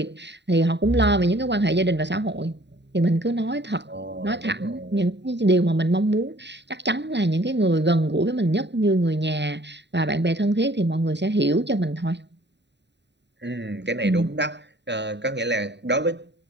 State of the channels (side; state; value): left; late; 0.51 ms